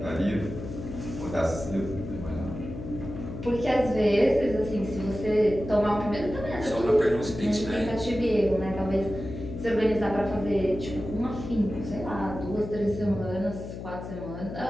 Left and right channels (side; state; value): left; noise; hum, 9 dB below the sound